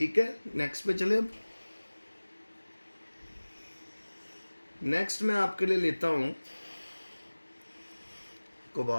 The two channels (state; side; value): inverted; both; correlation -1.00